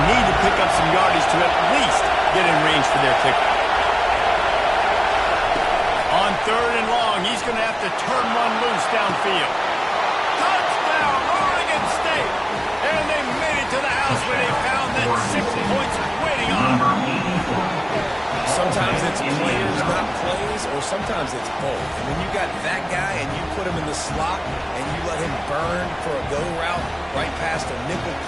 need to pick up some yardage to at least get in range for their kicker. On third and long, he's going to have to turn one loose downfield. Touchdown, Oregon State! And they made it to the house where they found that 6 points waiting on them. Sometimes it's players, not plays, or sometimes it's both. And when you got that guy and you put him in the slot and you let him burn for a go route right past a nickel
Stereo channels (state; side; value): identical; both; correlation 1.00